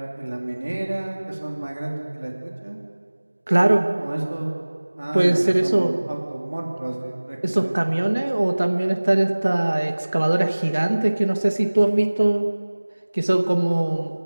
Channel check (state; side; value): inverted; both; correlation -1.00